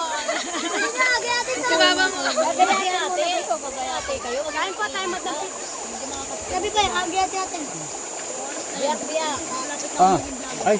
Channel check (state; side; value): identical; both; correlation 1.00